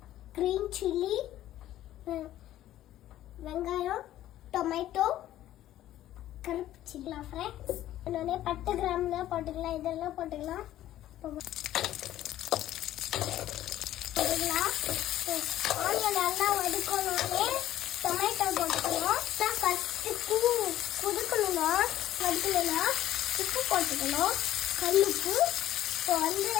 க்ரீன் சில்லி, வெங்காயம், டொமேட்டோ, கருப்பு சில்லி ஃப்ரெண்ட்ஸ். இன்னொன்னே பட்டை கிராம்லாம் போட்டுக்கலாம், இதெல்லாம் போட்டுக்கலாம். ஆனியன் நல்லா வதக்கணுன்னே டொமேட்டோ போட்டுக்கணும். ஃபஸ்ட்டு குதுக்கணும்னா வதக்கணும்னா உப்பு போட்டுக்கணும், கல்லுப்பு. இப்போ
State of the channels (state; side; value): quieter; right; 13.3 dB